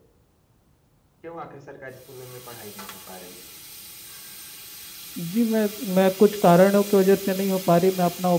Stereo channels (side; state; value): both; identical; correlation 1.00